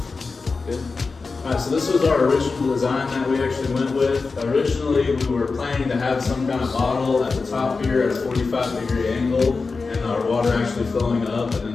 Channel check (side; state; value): right; quieter; 4.3 dB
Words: Good. Alright, so this was our original design that we actually went with. Originally, we were planning to have some kind of bottle at the top here at a 45-degree angle, and our water actually flowing up and